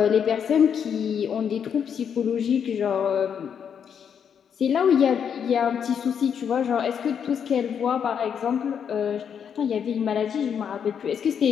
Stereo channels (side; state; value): right; quieter; 7.7 dB